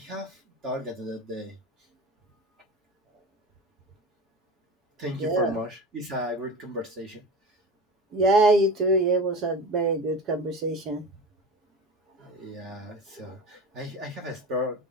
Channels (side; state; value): both; normal; correlation 0.30